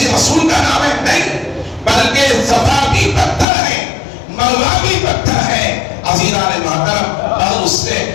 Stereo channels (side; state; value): right; drops out; at 3.5 s